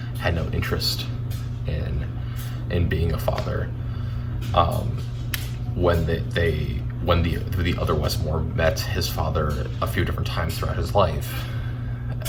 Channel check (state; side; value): identical; both; correlation 1.00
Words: had no interest in being a father. When the other Westmore met his father a few different times throughout his life,